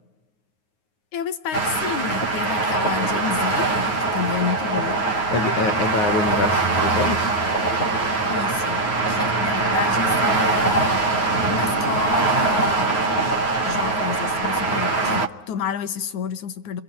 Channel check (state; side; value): late; right; 9.5 ms